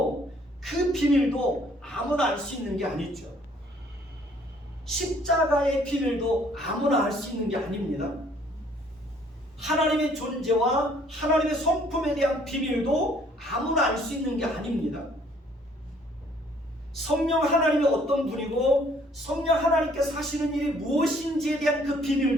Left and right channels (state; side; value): normal; both; correlation 0.61